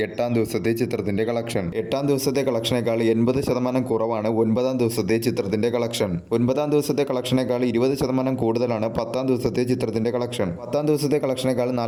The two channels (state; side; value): identical; both; correlation 1.00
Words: എട്ടാം ദിവസത്തെ ചിത്രത്തിന്റെ കളക്ഷൻ. എട്ടാം ദിവസത്തെ കളക്ഷനേക്കാൾ 80% കുറവാണ് ഒൻപതാം ദിവസത്തെ ചിത്രത്തിന്റെ കളക്ഷൻ. ഒൻപതാം ദിവസത്തെ കളക്ഷനേക്കാൾ 20% കൂടുതലാണ് പത്താം ദിവസത്തെ ചിത്രത്തിന്റെ കളക്ഷൻ. പത്താം ദിവസത്തെ കളക്ഷനേക്കാൾ